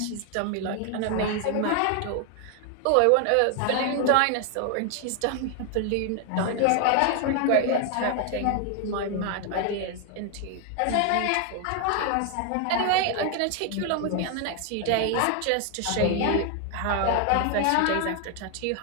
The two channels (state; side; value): different; both; correlation 0.00